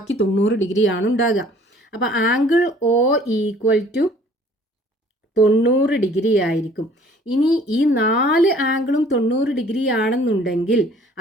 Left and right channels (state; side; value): normal; both; correlation 0.54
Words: 90 ഡിഗ്രിയാണ് ഉണ്ടാകുക. അപ്പോൾ angle O equal to 90 degree ആയിരിക്കും. ഇനി ഈ 4 ആംഗിളും 90 ഡിഗ്രി ആണെന്നുണ്ടെങ്കിൽ